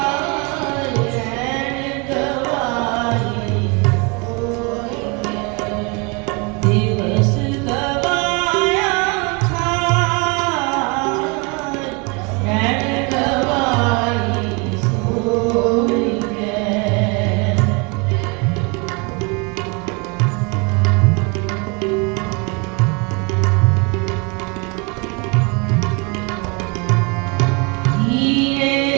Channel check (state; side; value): quieter; left; 30.7 dB